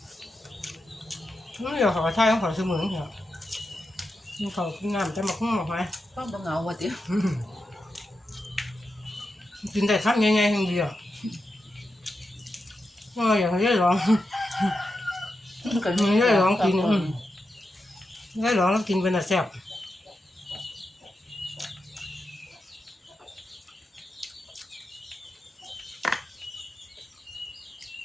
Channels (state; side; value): normal; both; correlation 0.88